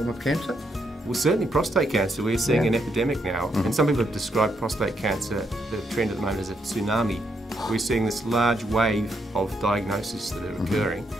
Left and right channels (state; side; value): normal; both; correlation 0.77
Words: of cancer? Well, certainly prostate cancer, we're seeing an epidemic now, and some people have described prostate cancer, the trend at the moment, as a tsunami. We're seeing this large wave of diagnoses that are occurring.